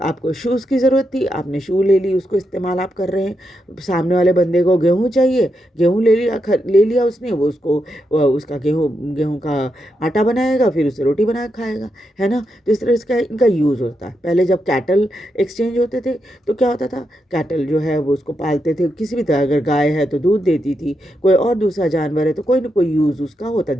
शूज़ की ज़रूरत थी, आपने शू ले ली, उसको इस्तेमाल आप कर रहे हैं। सामने वाले बंदे को गेहूँ चाहिए, गेहूँ ले लिया उसने, वो उसका गेहूँ का आटा बनाएगा, फिर उससे रोटी बना के खाएगा, है ना? तो इस तरह इसका इनका यूज़ होता है। पहले जब कैटल एक्सचेंज होते थे तो क्या होता था? कैटल जो है वो उसको पालते थे, किसी भी तरह, अगर गाय है तो दूध देती थी, कोई और दूसरा जानवर है तो कोई ना कोई यूज़ उसका होता है,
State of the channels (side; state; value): both; normal; correlation 0.84